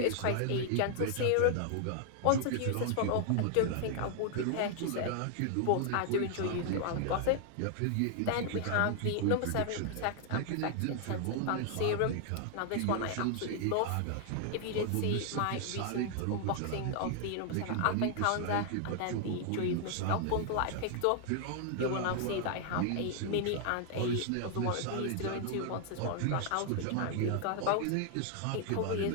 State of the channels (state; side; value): different; both; correlation 0.00